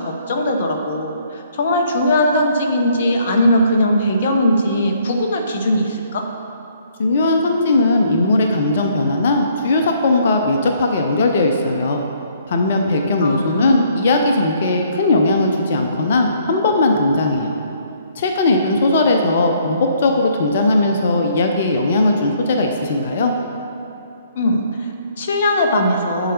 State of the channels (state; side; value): inverted; both; correlation -0.65